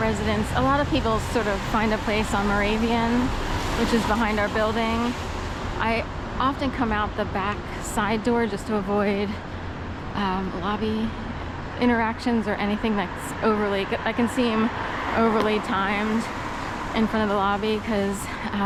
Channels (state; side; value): identical; both; correlation 1.00